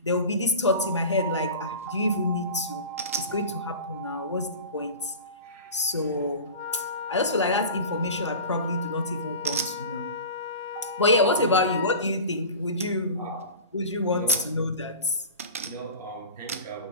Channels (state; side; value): inverted; both; correlation -0.35